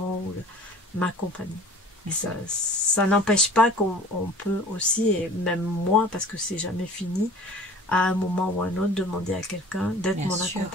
m'accompagner. Et ça n'empêche pas qu'on peut aussi, et même moi, parce que c'est jamais fini, à un moment ou à un autre, demander à quelqu'un d'être mon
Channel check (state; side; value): normal; both; correlation 0.45